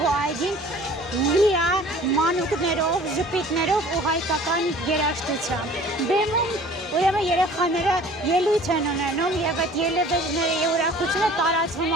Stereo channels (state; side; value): normal; both; correlation 0.48